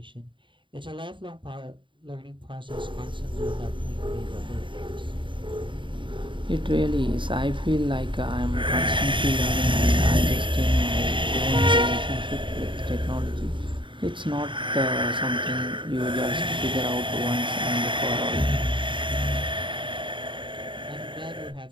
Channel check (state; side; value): late; left; 0.24 ms